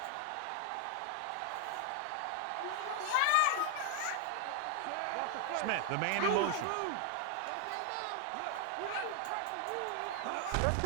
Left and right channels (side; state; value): both; different; correlation 0.00